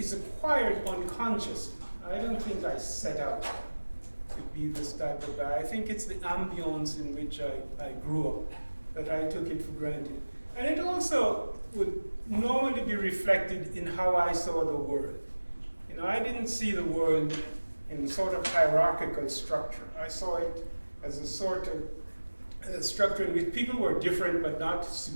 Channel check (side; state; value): both; inverted; correlation -1.00